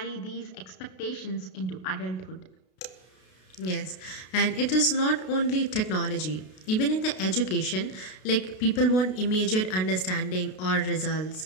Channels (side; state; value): right; late; 32 ms